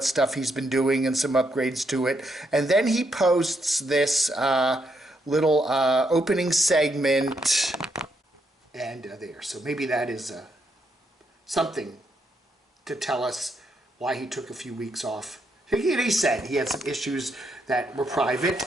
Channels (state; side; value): normal; both; correlation 0.78